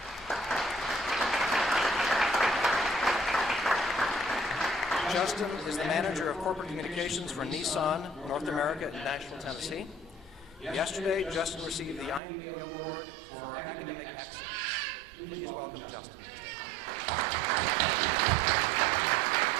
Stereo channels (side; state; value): left; drops out; at 12.2 s